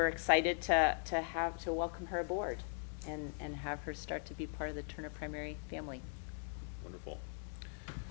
excited to welcome her aboard and have her start to be part of the Turner Primary family. Wonderful.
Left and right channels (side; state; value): right; silent; 51 dB below the other